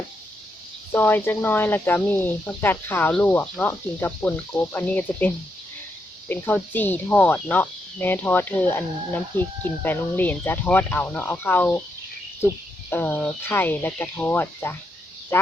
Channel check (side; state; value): both; normal; correlation 0.81